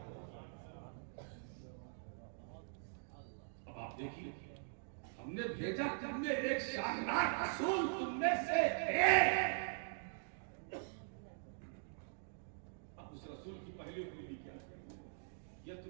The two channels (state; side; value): silent; left; digital silence